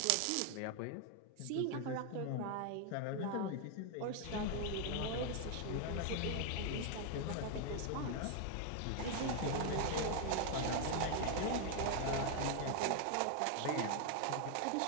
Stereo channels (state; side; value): different; both; correlation 0.00